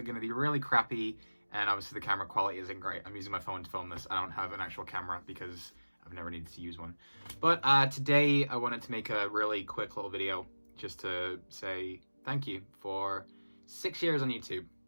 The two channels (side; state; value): both; inverted; correlation -1.00